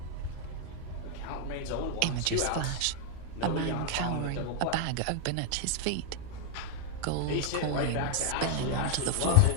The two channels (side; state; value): both; different; correlation 0.00